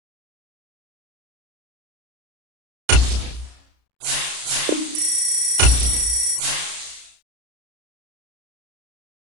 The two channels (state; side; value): late; left; 33 ms